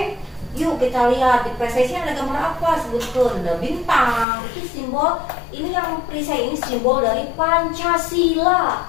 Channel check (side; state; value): right; drops out; at 4.2 s